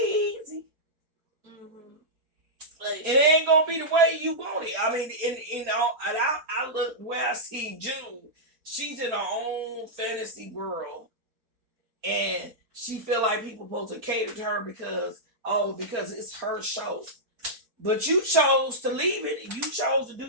easy. Mm-hmm. Like, it ain't gonna be the way you want it. I mean, I look where I see June. She's in her own fantasy world, and she feel like people supposed to cater to her because it's her show. But you chose to leave it, and you chose to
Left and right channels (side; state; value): left; late; 4.3 ms